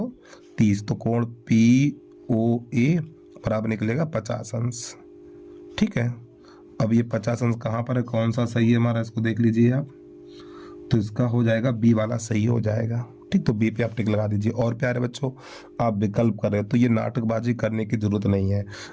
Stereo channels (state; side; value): identical; both; correlation 1.00